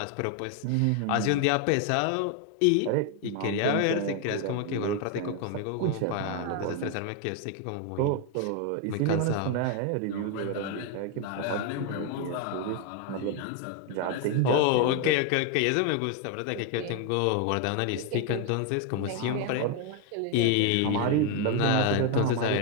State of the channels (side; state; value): both; different; correlation 0.01